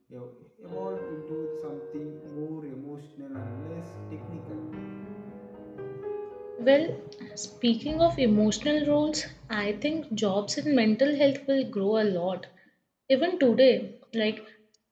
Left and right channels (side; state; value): both; identical; correlation 1.00